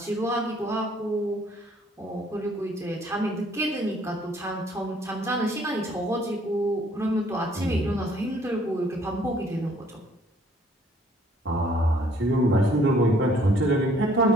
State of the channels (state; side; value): normal; both; correlation 0.61